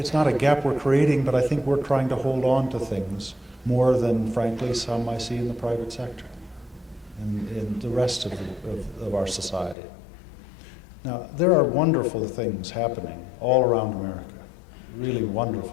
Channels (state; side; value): drops out; right; at 9.8 s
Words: not a gap we're creating, but I think we're trying to hold on to things more than, frankly, some I see in the private sector and in the rest of our society. Now, there are wonderful things happening all around America, really